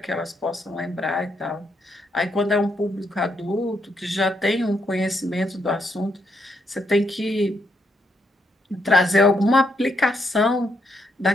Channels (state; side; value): normal; both; correlation 0.77